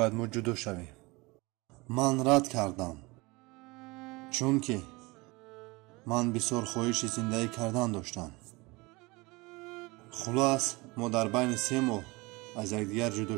ما جدا شویم. من رد کردم چون که من بسیار خواهش زندگی کردن داشتم. خلاص ما در بین 3 ماه از یکدیگر جدا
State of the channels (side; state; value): left; quieter; 24.3 dB